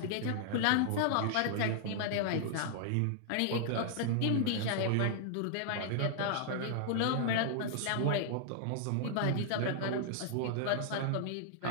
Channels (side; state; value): both; different; correlation -0.01